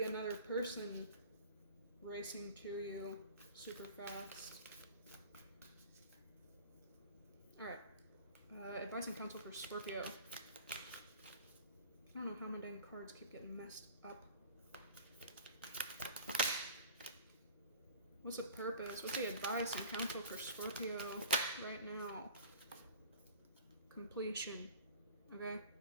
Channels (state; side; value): inverted; both; correlation -0.41